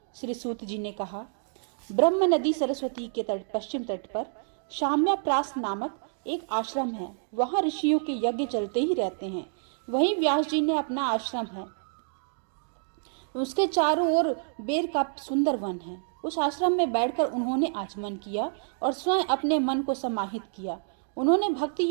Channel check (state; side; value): silent; left; digital silence